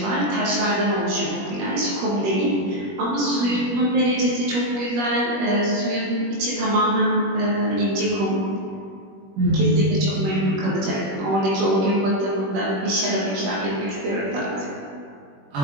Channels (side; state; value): left; late; 21 ms